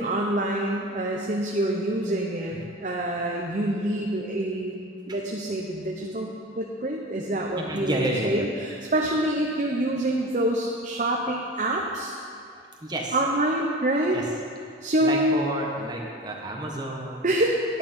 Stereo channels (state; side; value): normal; both; correlation 0.33